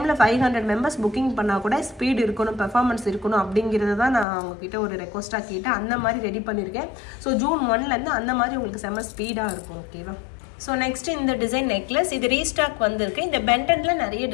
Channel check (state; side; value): drops out; right; at 4.2 s